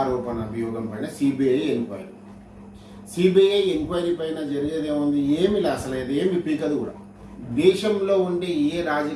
అభియోగం పైన సిబిఐ ఎంక్వైరీ పైన జరిగేది ఏముంది? ఏమి లేదు, అసలు ఏమి పీకదు కూడా. దేశంలో ఉండే ఏ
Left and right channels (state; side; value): identical; both; correlation 1.00